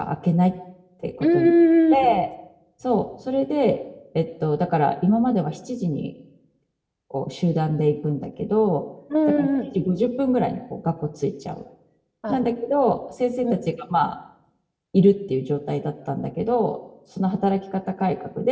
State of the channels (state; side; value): identical; both; correlation 1.00